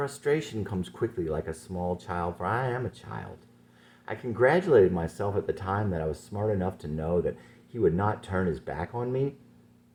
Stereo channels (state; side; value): identical; both; correlation 1.00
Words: comes quickly like a small child, for I am a child. I congratulated myself at the time that I was smart enough to know that he would not turn his back on me.